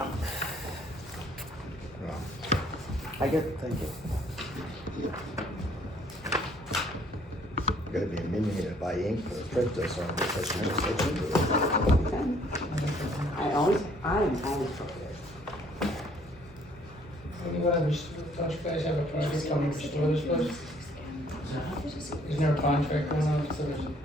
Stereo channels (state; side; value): normal; both; correlation 0.61